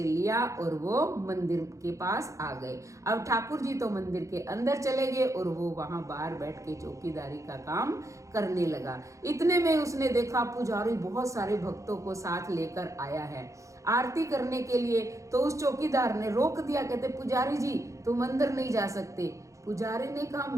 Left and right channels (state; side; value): late; left; 0.15 ms